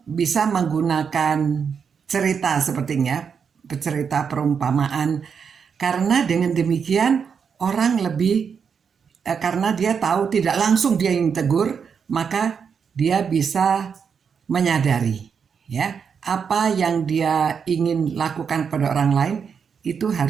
bisa menggunakan cerita sepertinya, cerita perumpamaan. Karena dengan demikian orang lebih, karena dia tahu tidak langsung dia yang tegur, maka dia bisa menyadari ya apa yang dia ingin lakukan pada orang lain itu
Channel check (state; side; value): quieter; left; 6.5 dB